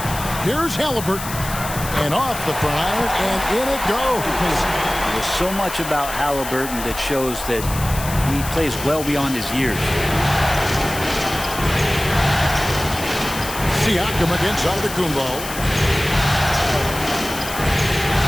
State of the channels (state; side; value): noise; left; hiss, 9 dB below the sound